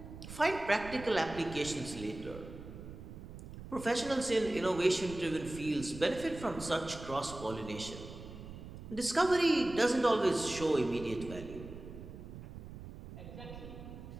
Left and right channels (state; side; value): noise; right; rumble, 13 dB below the sound